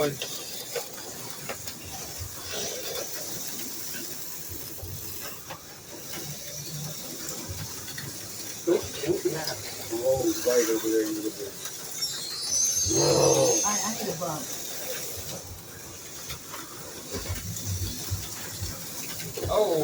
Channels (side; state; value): both; identical; correlation 1.00